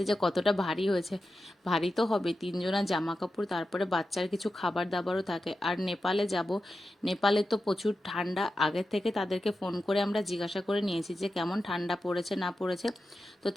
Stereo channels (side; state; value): both; normal; correlation 0.91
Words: যে কতটা ভারী হয়েছে। ভারী তো হবে, তিনজনা জামা কাপড়, তারপরে বাচ্চার কিছু খাবার দাবারও থাকে। আর নেপালে যাব, নেপালে তো প্রচুর ঠান্ডা। আগে থেকে তাদেরকে ফোন করে আমরা জিজ্ঞাসা করে নিয়েছি যে কেমন ঠান্ডা পড়েছে না পড়েছে। তো